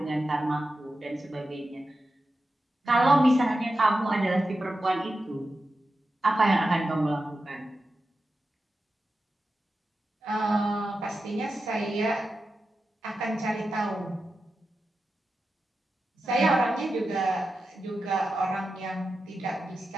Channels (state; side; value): normal; both; correlation 0.91